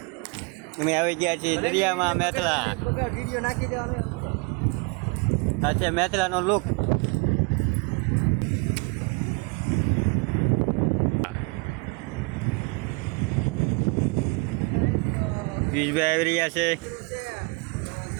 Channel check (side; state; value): left; quieter; 30.1 dB